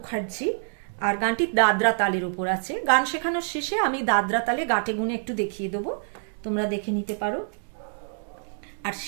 আর গানটি দাদরা তালের উপর আছে। গান শেখানোর শেষে আমি দাদরা তালে গাটে গুনে একটু দেখিয়ে দেবো, তোমরা দেখে নিতে পারো। আর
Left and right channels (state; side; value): silent; left; digital silence